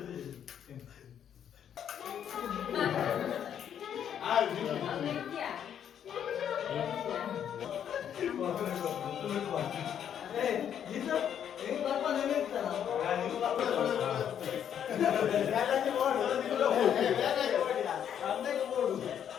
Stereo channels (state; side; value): quieter; right; 9.1 dB